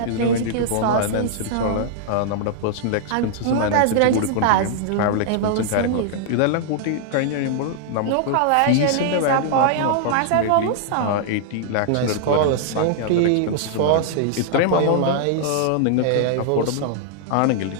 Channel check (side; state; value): both; different; correlation -0.01